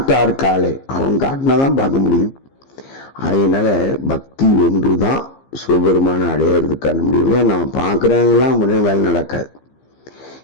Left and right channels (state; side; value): late; right; 15 ms